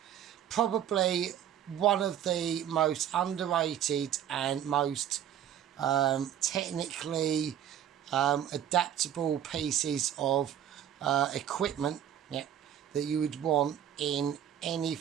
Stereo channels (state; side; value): quieter; left; 10.2 dB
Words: probably one of the most underrated and most technically adaptable pieces of equipment, yeah, that you would want in any